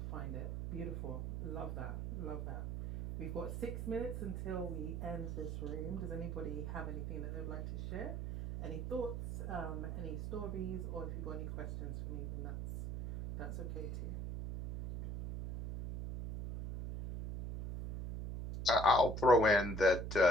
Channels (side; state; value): right; noise; hum, 4 dB below the sound